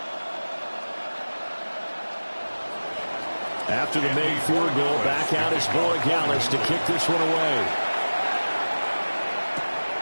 After the made field goal, back out is Borregales to kick this one away.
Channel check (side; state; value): both; inverted; correlation -1.00